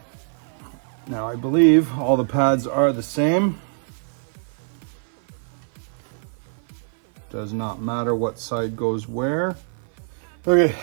Now I believe all the pads are the same. Does not matter what side goes where. Okay,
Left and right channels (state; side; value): silent; left; 57 dB below the other